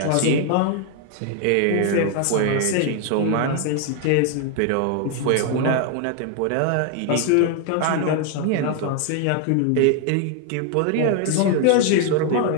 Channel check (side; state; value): both; different; correlation 0.01